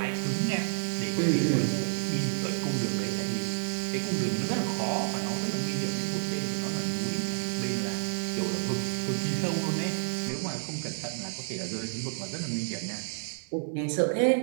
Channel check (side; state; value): left; silent; 58 dB below the other